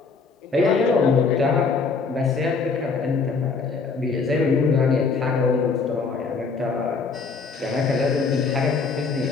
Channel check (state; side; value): quieter; right; 4.7 dB